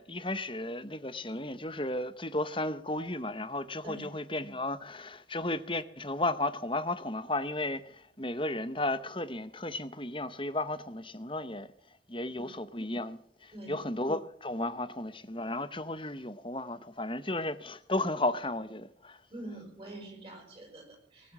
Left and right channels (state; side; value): normal; both; correlation 0.26